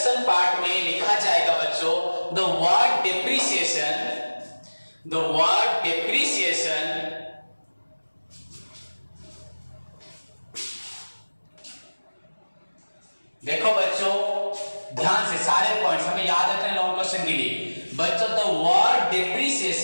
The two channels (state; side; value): inverted; both; correlation -1.00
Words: पार्ट में लिखा जाएगा बच्चों, the word depreciation, the word depreciation देखो बच्चों ध्यान से सारे पॉइंट्स हमें याद रखने हैं लॉन्ग क्वेश्चन के लिए। बच्चों the word